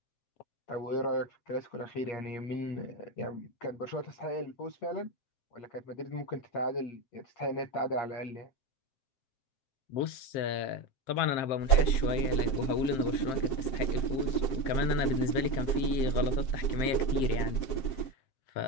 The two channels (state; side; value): late; right; 7.6 ms